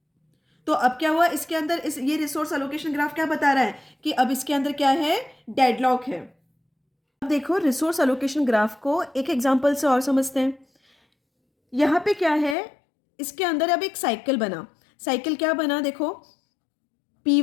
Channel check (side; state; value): right; drops out; at 12.6 s